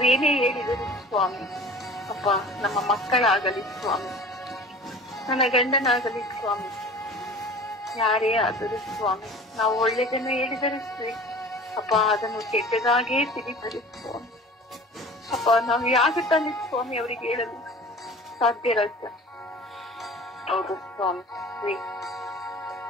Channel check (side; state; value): both; normal; correlation 0.41